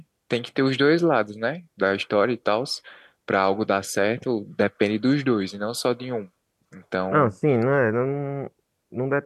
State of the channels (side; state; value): both; identical; correlation 1.00